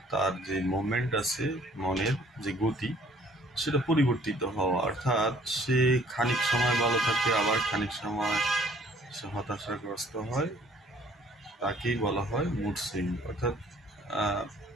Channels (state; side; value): normal; both; correlation 0.58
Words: তার যে মোমেন্ট আছে, মনের যে গতি, সেটা পরিবর্তিত হওয়া। অর্থাৎ সে খানিক সময় ভালো থাকে, আবার খানিক সময় সে হতাশাগ্রস্ত হয়। তাকেই বলা হয় মুড সুইং। অর্থাৎ